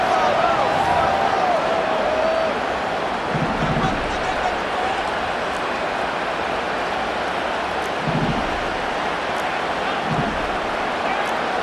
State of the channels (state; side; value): identical; both; correlation 1.00